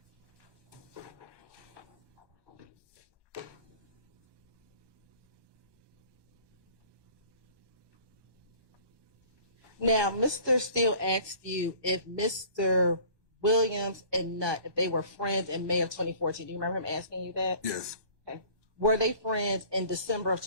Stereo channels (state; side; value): late; left; 1.2 ms